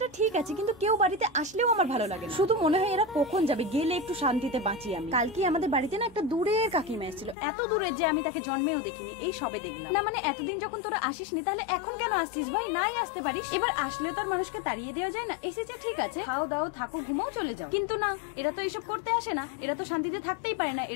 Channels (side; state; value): right; drops out; at 7.4 s